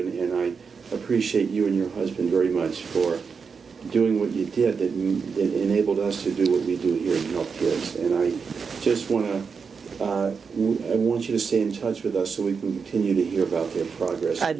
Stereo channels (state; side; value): quieter; left; 5.6 dB